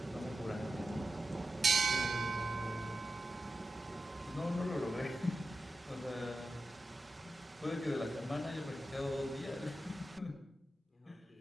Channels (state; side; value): normal; both; correlation 0.91